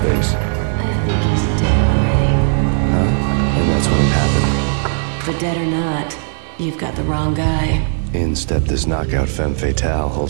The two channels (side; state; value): left; silent; digital silence